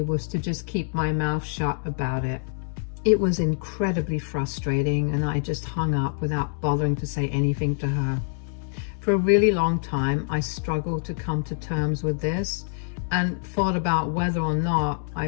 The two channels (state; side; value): silent; right; digital silence